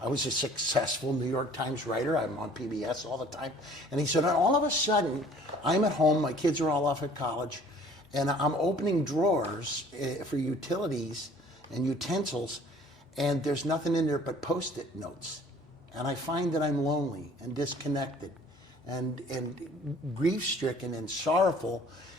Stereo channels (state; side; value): normal; both; correlation 0.53